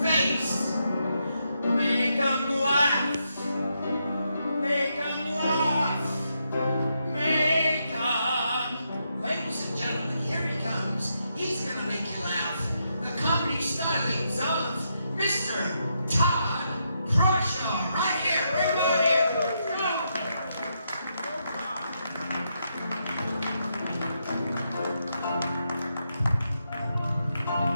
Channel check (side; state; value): both; inverted; correlation -0.81